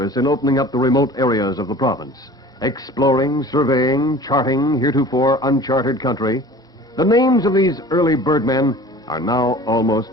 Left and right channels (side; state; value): both; normal; correlation 0.43